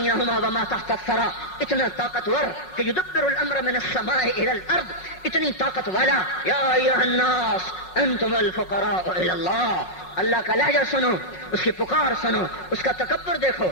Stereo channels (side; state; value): right; late; 5.5 ms